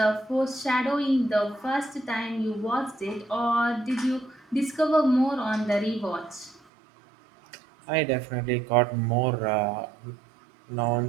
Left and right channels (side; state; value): left; drops out; at 6.6 s